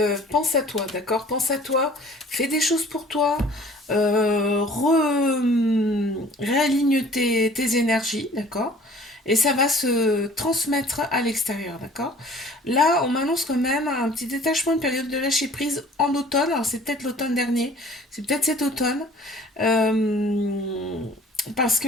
pense à toi, d'accord? Pense à toi, fais des choses pour toi, réaligne tes énergies, d'accord? Et ça va se transmettre à l'extérieur, d'accord? Là, on m'annonce quand même un petit détachement, une période de lâcher prise en automne. Alors, c'est peut-être l'automne dernier, c'est peut-être cet automne. Euh, Parce que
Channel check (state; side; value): normal; both; correlation 0.50